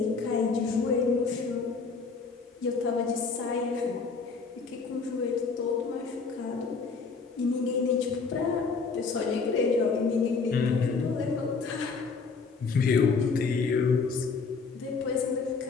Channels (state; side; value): quieter; right; 4.8 dB